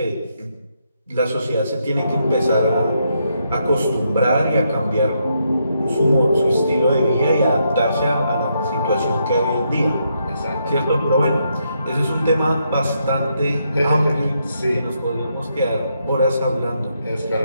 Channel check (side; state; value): both; inverted; correlation -0.78